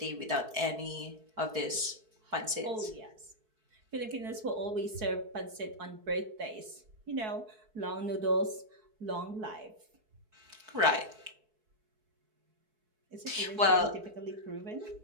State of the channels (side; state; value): left; late; 4.6 ms